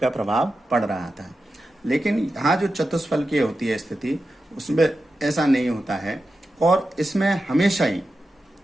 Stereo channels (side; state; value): both; normal; correlation 0.91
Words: प्रभाव पड़ रहा था। लेकिन यहाँ जो चतुष्फलकीय होती है स्थिति, उसमें ऐसा नहीं होता है और इसमें हमेशा ही